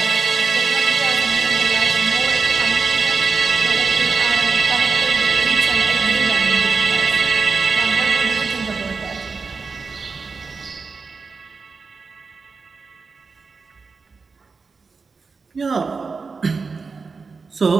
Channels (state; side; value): quieter; left; 4.7 dB